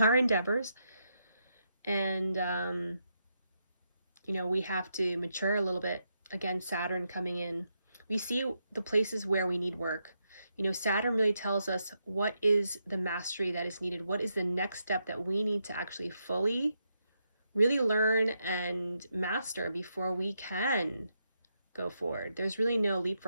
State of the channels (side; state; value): both; inverted; correlation -0.82